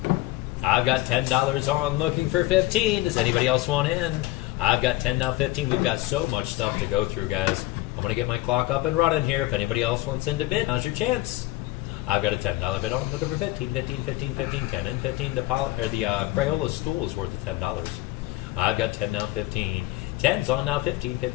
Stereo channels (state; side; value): quieter; right; 18.3 dB